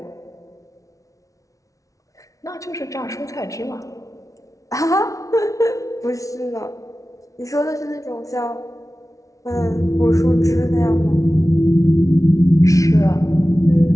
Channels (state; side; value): late; right; 0.16 ms